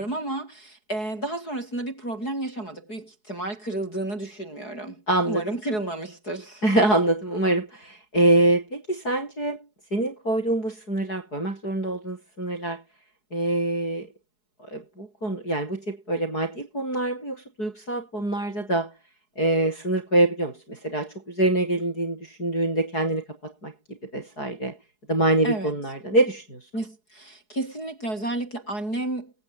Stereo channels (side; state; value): right; late; 4.7 ms